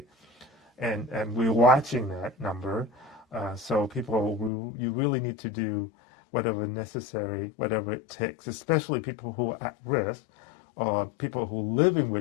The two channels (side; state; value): right; drops out; at 4.5 s